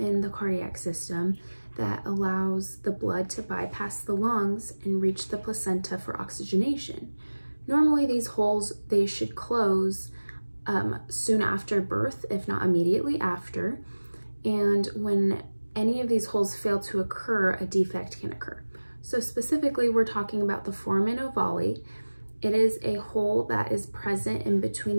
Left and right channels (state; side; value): inverted; both; correlation -1.00